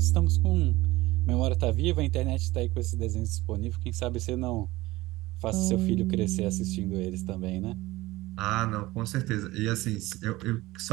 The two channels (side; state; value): left; quieter; 19.0 dB